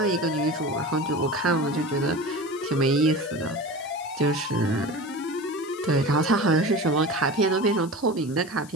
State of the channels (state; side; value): noise; left; hiss, 21 dB below the sound